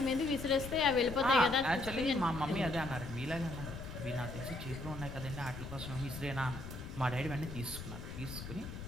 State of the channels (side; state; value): left; noise; rumble, 9 dB below the sound